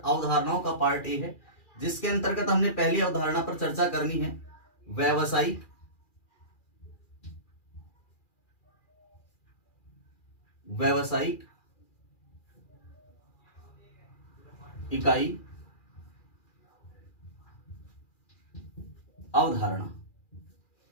का पार्ट ए है, जिसके अंतर्गत हमने पहली अवधारणा पर चर्चा करनी है व्यवसायिक इकाई अवधारणा।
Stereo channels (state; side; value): late; right; 2.4 ms